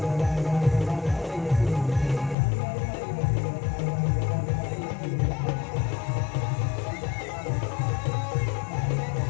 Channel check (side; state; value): right; drops out; at 2.4 s